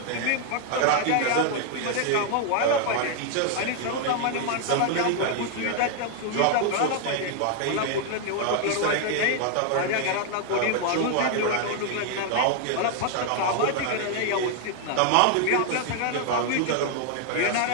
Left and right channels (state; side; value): different; both; correlation 0.00